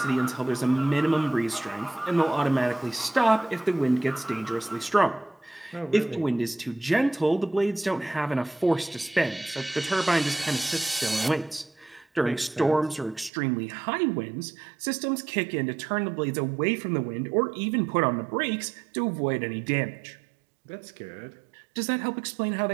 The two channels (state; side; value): drops out; left; at 13.3 s